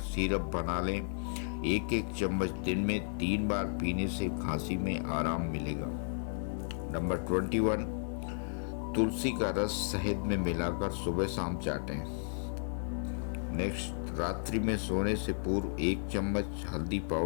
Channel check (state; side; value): silent; right; digital silence